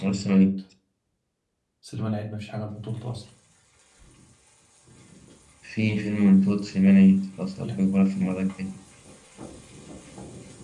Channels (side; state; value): both; identical; correlation 1.00